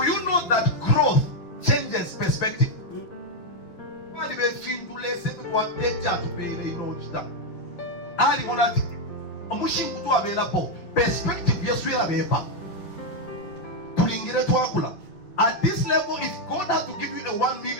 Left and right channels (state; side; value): late; right; 6.0 ms